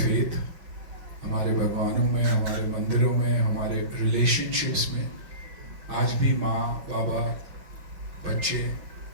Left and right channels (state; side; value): late; left; 5.4 ms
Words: हमारे भगवानों में, हमारे मंदिरों में, हमारे रिलेशनशिप्स में, आज भी माँ बाबा बच्चे